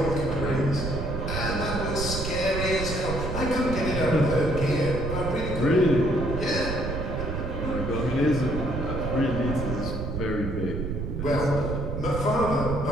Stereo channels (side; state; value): right; noise; rumble, 4 dB below the sound